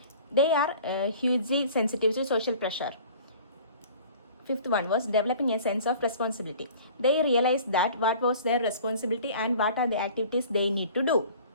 They are hugely sensitive to social pressure. Fifth one was developing a sense of responsibility. They realized that what was their responsibility and what are the activities they need to do.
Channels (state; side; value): inverted; both; correlation -0.47